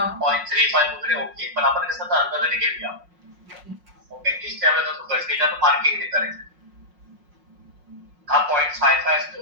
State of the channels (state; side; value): late; left; 5.5 ms